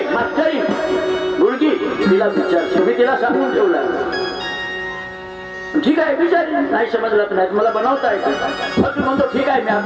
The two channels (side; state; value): both; identical; correlation 1.00